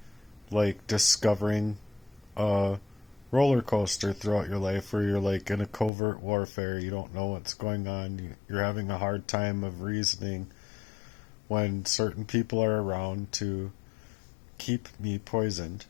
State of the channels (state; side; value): drops out; right; at 5.9 s